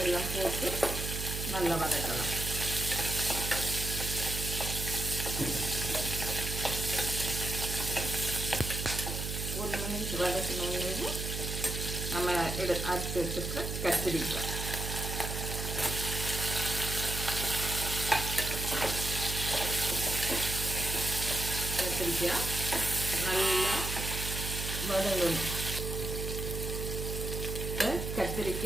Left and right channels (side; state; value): right; noise; hum, 4 dB below the sound